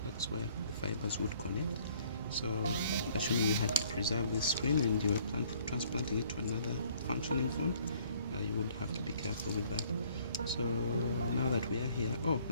that's where the fibers would connect. So assuming you had to preserve this screen and you were transplanting it to another functioning phone, you would have to be careful with that. So now that we are here,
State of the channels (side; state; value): both; inverted; correlation -0.60